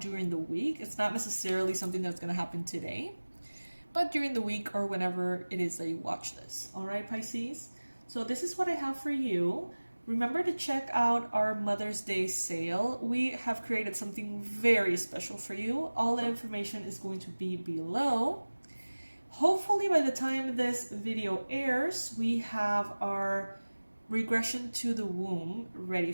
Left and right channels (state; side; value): inverted; both; correlation -1.00